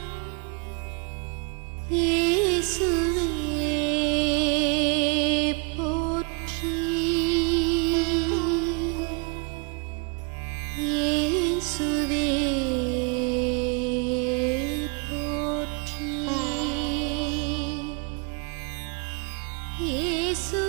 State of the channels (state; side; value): quieter; left; 36.2 dB